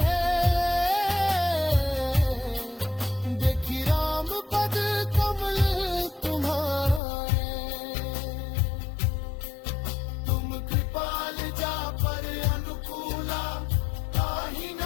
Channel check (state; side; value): drops out; right; at 7.0 s